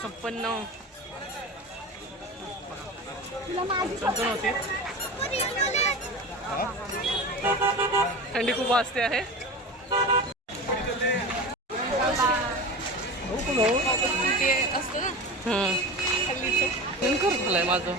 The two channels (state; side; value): normal; both; correlation 0.30